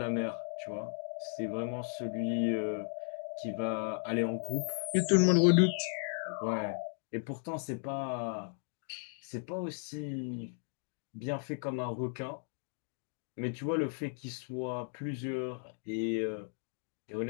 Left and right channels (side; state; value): right; silent; 54 dB below the other